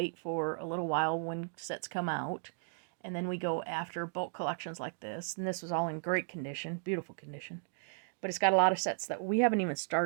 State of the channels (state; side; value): silent; left; digital silence